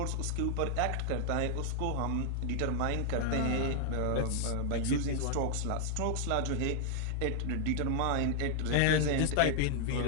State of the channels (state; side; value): different; both; correlation -0.01